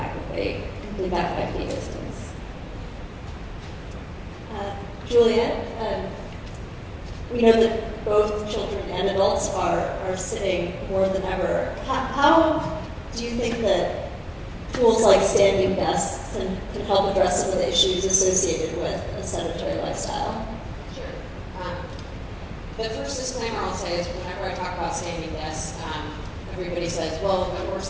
that they complete that 5K distance. Juliet, we know that both children and adults are sitting more than ever. How do you think that tools like standing desks can help address some of the issues associated with a sedentary lifestyle? Sure. The first disclaimer I'll say is whenever I talk about standing desks, everybody says, well, of course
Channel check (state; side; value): identical; both; correlation 1.00